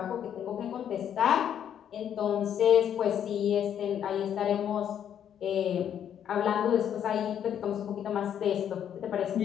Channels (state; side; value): quieter; right; 9.4 dB